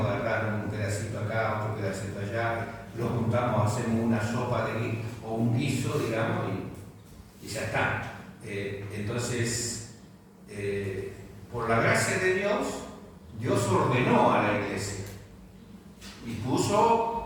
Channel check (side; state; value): both; identical; correlation 1.00